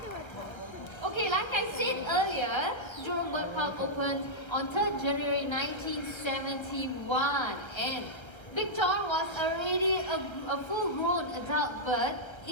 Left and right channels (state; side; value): late; right; 1.3 ms